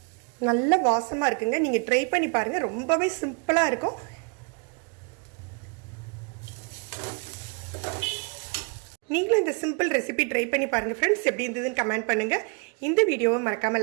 நல்ல வாசமாக இருக்குங்க. நீங்கள் ட்ரை பண்ணி பாருங்கள். ரொம்பவே சிம்பிளாக இருக்கும். நீங்களும் இந்த சிம்பிள் ரெசிபி ட்ரை பண்ணி பாருங்கள் ஃப்ரெண்ட்ஸ். எப்படி இருந்ததுன்னு கமெண்ட் பண்ணுங்கள். இந்த வீடியோவை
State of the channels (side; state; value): left; quieter; 34.8 dB